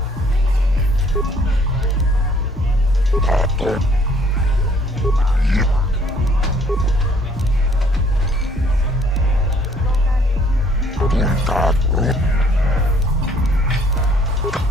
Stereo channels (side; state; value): both; normal; correlation 0.61